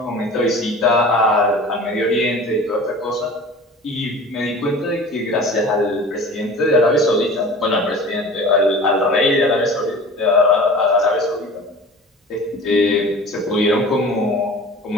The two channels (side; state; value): both; normal; correlation 0.40